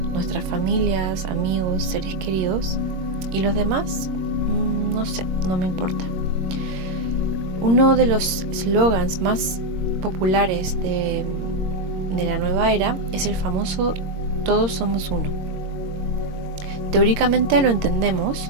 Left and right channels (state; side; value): late; left; 22 ms